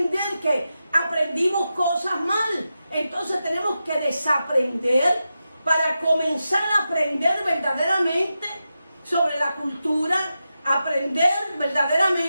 que aprendimos cosas mal. Entonces tenemos que desaprender para comenzar a aprender verdaderamente sobre la cultura, aprender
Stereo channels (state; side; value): inverted; both; correlation -0.90